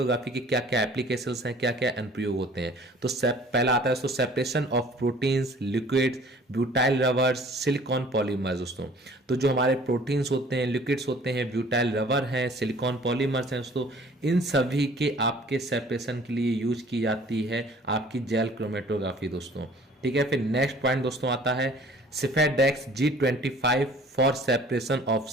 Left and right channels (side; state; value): both; normal; correlation 0.51